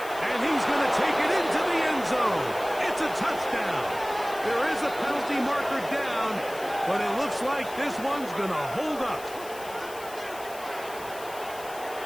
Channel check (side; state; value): left; noise; hiss, 16 dB below the sound